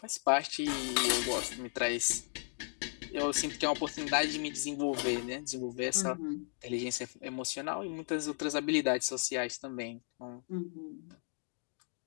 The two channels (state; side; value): silent; right; 54 dB below the other